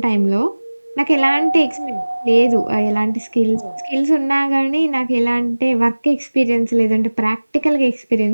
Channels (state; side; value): inverted; both; correlation -1.00